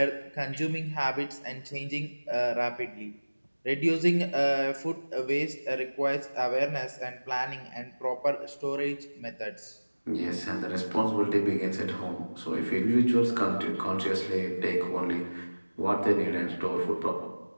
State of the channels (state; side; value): inverted; both; correlation -1.00